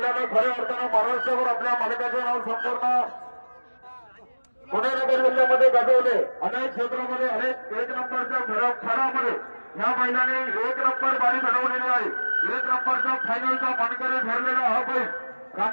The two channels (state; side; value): inverted; both; correlation -1.00